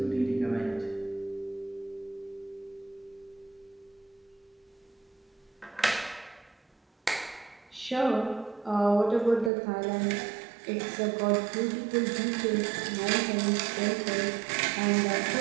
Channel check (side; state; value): left; drops out; at 9.5 s